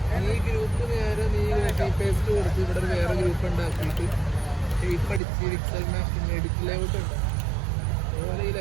ഈ ഗ്രൂപ്പ് നേരെ നീ പേസ്റ്റ് കൊടുത്ത് ഇവിടെ ഒരു വേറെ ഗ്രൂപ്പ് ഉണ്ടാക്കിയിട്ട് പഠിച്ച് പിക്സൽ മാപ്പിംഗ് എഡിറ്റ് ലേഔട്ട് ഉണ്ട്. അതുപോലെ ഈ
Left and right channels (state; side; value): drops out; left; at 5.2 s